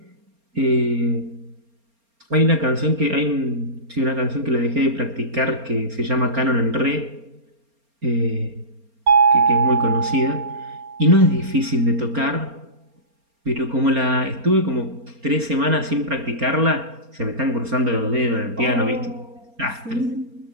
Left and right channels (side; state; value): left; late; 4.3 ms